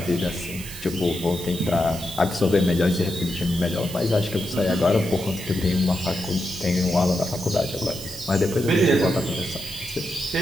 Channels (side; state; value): right; noise; hiss, 12 dB below the sound